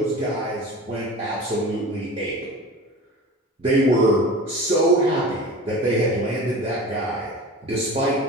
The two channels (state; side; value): normal; both; correlation 0.35